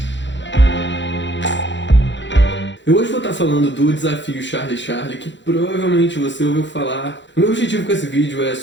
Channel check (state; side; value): late; right; 0.53 ms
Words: Eu hoje vou estar falando do desafio Charlie Charlie, que provavelmente você ouviu falar. O meu objetivo com esse vídeo é